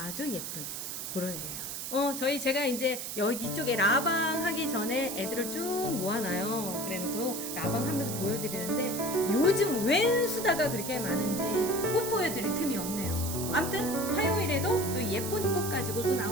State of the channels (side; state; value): right; noise; hiss, 6 dB below the sound